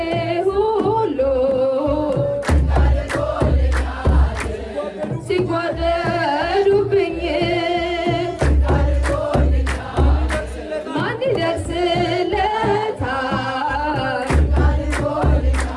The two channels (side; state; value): both; identical; correlation 1.00